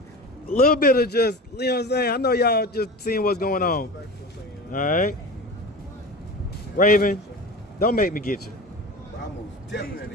little bit of just, you know what I'm saying? I know y'all just seeing what's going on. All right, Raven, don't make me get you. I most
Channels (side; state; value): both; normal; correlation 0.32